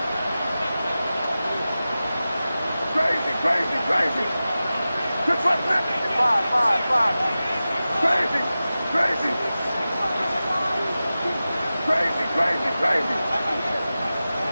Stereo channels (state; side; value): inverted; both; correlation -0.95